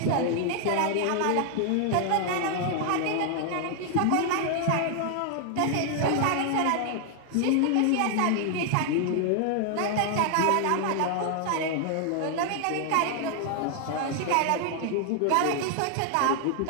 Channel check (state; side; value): different; both; correlation 0.00